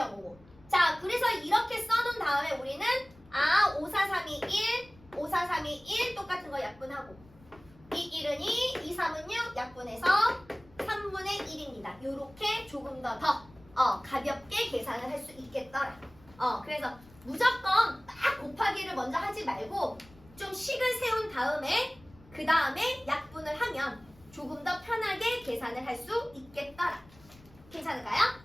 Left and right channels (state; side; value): noise; left; rumble, 25 dB below the sound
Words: 자, 그래서 이렇게 써놓은 다음에 우리는 5, 4, 3이 1, 5, 4, 3이 1 똑같은 거 약분하고 2, 1은 2, 2, 3은 6 약분해서 3분의 1입니다. 요렇게 조금 더 가볍게 계산을 할 수 있겠더라. 그래서 무조건 딱 곱하기를 먼저 하지 말고 좀 식을 세운 다음에 그 다음에 약분을 하면 조금 더 편하게 계산을 할 수 있겠더라. 괜찮을까요?